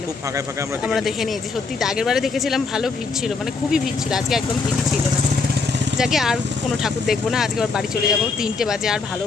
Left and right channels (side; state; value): right; quieter; 4.4 dB